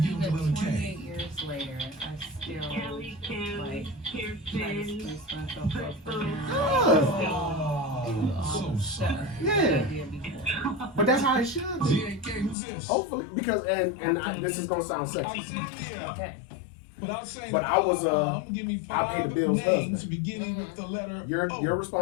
with even the letter K. 28 years later, I still, Kelly, like, try to Kirsten, spruce myself up for him. Oh, so sorry. Yeah, but that's how it should be. ZAK, who's this? Hopefully, because this is gonna sound sexy. Okay. Without saying But I was, I'm gonna give me I paid the 5 bills names husband. beginning with the letter Your O.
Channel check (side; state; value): right; drops out; at 12.6 s